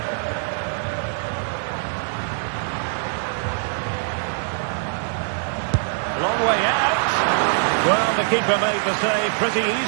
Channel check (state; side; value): silent; left; digital silence